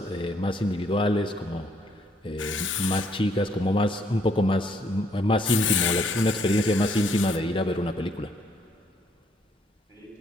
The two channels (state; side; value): normal; both; correlation 0.68